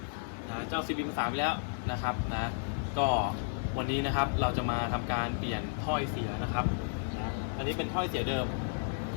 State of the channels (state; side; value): silent; right; digital silence